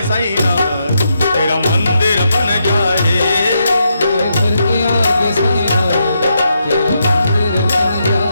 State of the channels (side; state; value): both; inverted; correlation -0.81